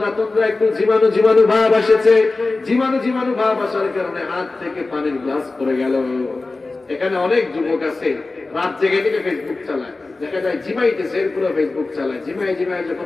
তন্দ্রা একটু জীবাণু জীবাণু ভাব এসেছে। জীবাণু জীবাণু ভাব আসার কারণে হাত থেকে পানির গ্লাস পড়ে গেল। এখানে অনেক যুবক আছে, রাত জেগে থেকে ফেসবুক চালায়, দেখা যায় জিমাইতেছে, এরপরে ফেসবুক চালায়। জিমাই জিমাই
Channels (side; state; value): right; quieter; 3.4 dB